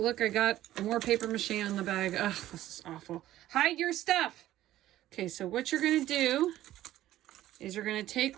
I got more paper mache on the bag. Ugh, this is awful. Hide your stuff. Okay, so what you're going to do is you're going to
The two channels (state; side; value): quieter; left; 14.1 dB